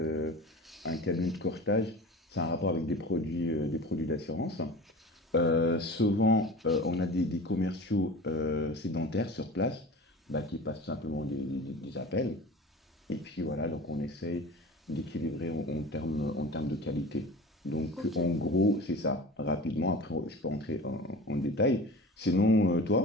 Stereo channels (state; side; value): normal; both; correlation 0.36